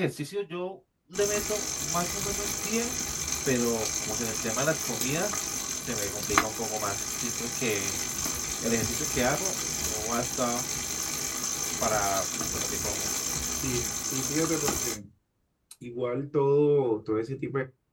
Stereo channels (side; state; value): both; identical; correlation 1.00